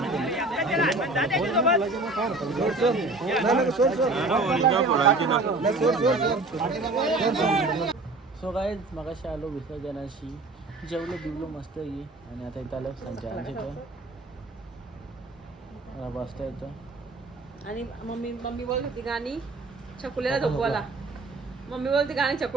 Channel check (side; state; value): left; quieter; 3.1 dB